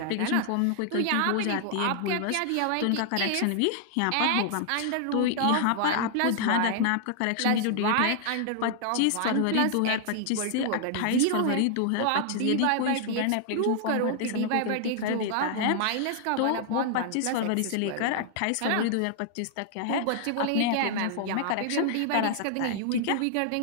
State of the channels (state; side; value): different; both; correlation 0.00